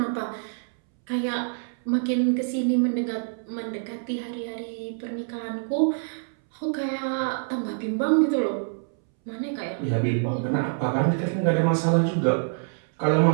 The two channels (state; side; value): silent; left; 61 dB below the other